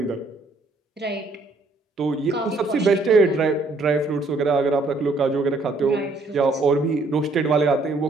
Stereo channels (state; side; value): quieter; left; 3.3 dB